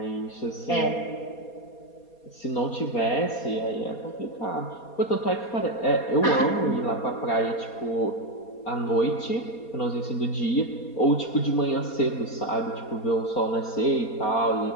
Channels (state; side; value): late; right; 4.2 ms